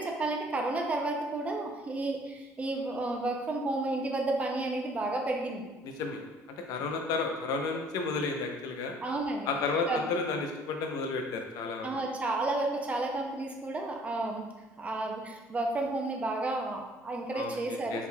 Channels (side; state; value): both; normal; correlation 0.57